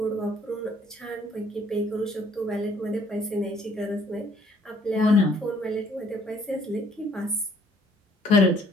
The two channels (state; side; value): normal; both; correlation 0.62